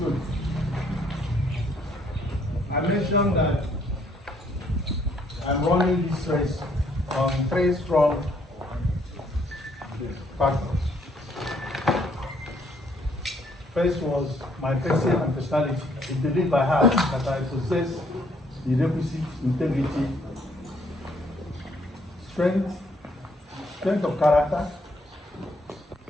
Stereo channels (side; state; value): both; normal; correlation 0.67